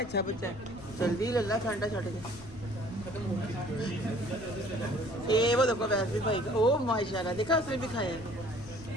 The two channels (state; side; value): noise; left; rumble, 20 dB below the sound